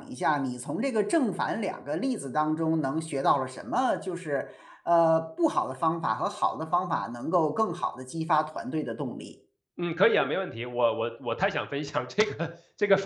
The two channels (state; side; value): identical; both; correlation 1.00